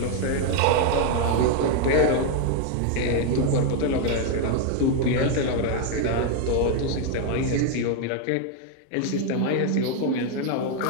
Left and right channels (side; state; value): both; different; correlation 0.01